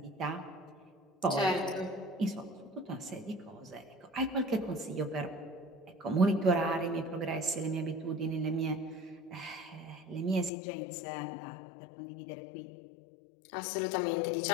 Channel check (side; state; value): right; drops out; at 10.5 s